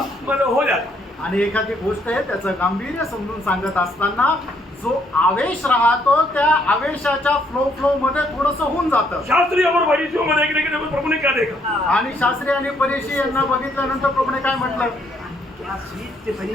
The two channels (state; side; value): normal; both; correlation 0.70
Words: मतलब हो जाता. आणि एखादी गोष्ट आहे त्याचं गांभीर्य समजून सांगत असताना जो आवेश राहतो त्या आवेशाच्या फ्लो मध्ये थोडस होऊन जातं. शास्त्री और फरीसियों में देखने के लिए प्रभु ने क्या देखा? आणि शास्त्री आणि परीक्षी यांना बघितल्यानंतर प्रभूने काय म्हटलं? क्या स्वीट थे